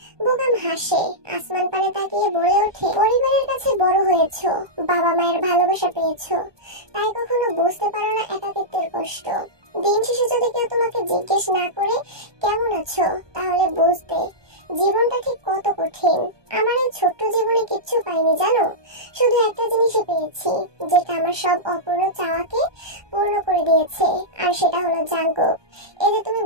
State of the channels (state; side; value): late; left; 1.2 ms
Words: বোগাম হাসে, আসমান পানে তাকিয়ে বলে ওঠে, পরিবারের কাছে বড় হয়েছো, বাবা মায়ের ভালোবাসা পেয়েছো, তাই কখনো বুঝতে পারো না একাকিত্বের কষ্ট। দিন শেষে যদি কেউ তোমাকে জিজ্ঞেস না করে কেমন আছো, তাহলে বুঝতে জীবনটা ঠিক কত কঠিন। আমার এই ছোট্ট জীবনে কিচ্ছু পাইনি জানো, শুধু একটা জিনিসই পেয়েছি, যেটা আমার সব অপূর্ণ চাওয়াকে পূর্ণ করে দিয়েছে, আর সেটা হলো জাঙ্কুক। এই যে তুমি